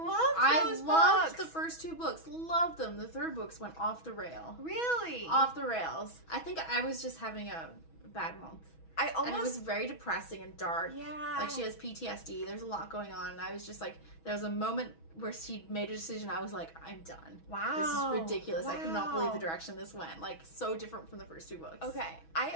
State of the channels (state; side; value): late; right; 6.2 ms